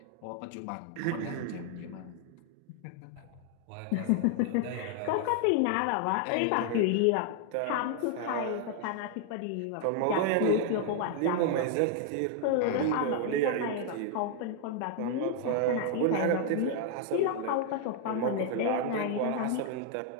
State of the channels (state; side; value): different; both; correlation 0.00